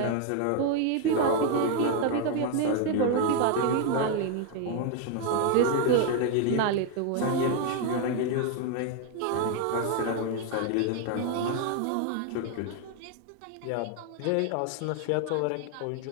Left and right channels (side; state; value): both; different; correlation 0.01